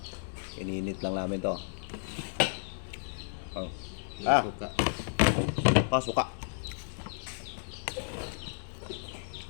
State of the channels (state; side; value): silent; right; 56 dB below the other